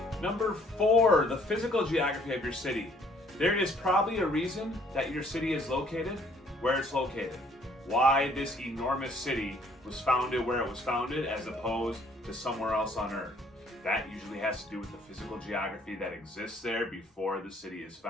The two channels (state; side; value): normal; both; correlation 0.62